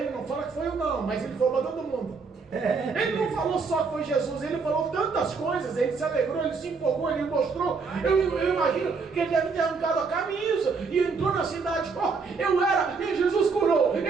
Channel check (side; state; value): left; quieter; 4.8 dB